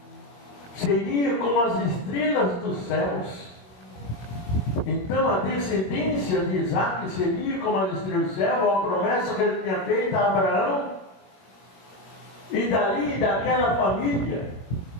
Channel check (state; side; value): late; right; 21 ms